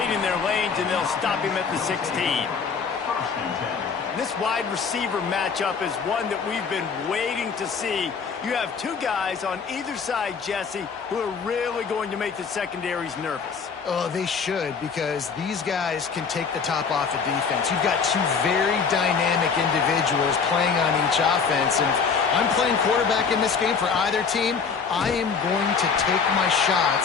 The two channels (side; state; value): right; quieter; 5.7 dB